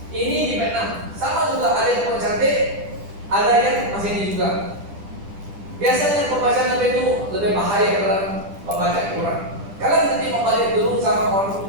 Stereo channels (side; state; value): left; late; 10 ms